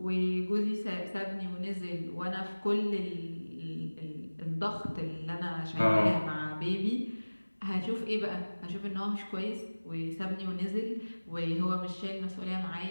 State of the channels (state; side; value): inverted; both; correlation -1.00